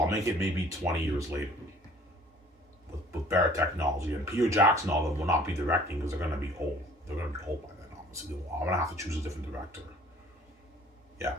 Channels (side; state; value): both; normal; correlation 0.52